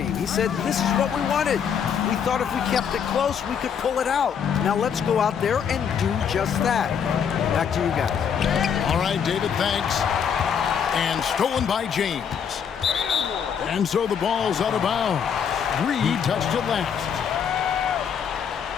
He said, this is what we wanted. We thought if we kept it close, we could pull it out. Now let's go out there and do just that. Back to you guys. All right, David, thanks. And stolen by James. And so the ball's out of bounds. Reed touched it last.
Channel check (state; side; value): quieter; right; 7.5 dB